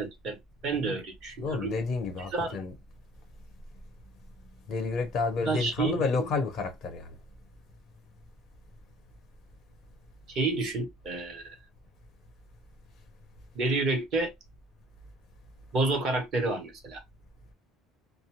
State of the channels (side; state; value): both; normal; correlation 0.53